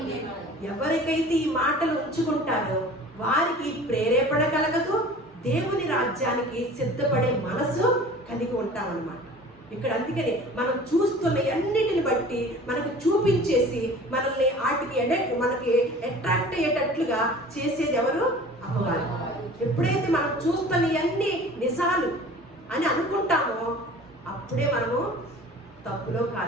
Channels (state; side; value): normal; both; correlation 0.43